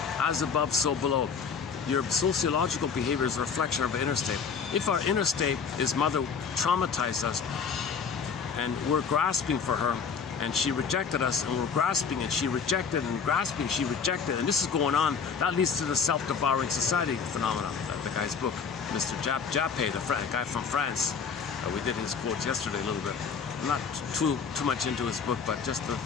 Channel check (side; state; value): right; quieter; 6.0 dB